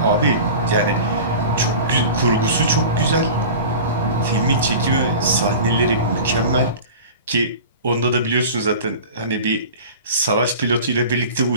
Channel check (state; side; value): inverted; both; correlation -0.36